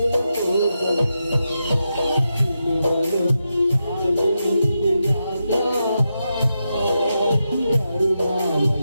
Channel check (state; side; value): inverted; both; correlation -0.87